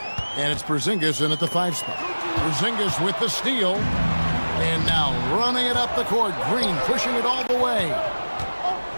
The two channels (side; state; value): both; inverted; correlation -1.00